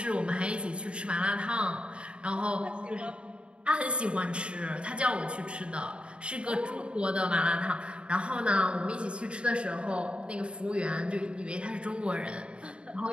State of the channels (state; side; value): late; left; 0.056 ms